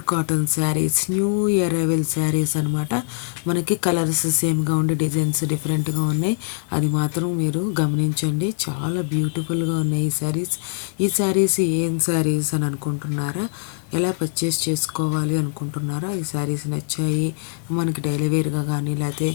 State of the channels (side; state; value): right; silent; digital silence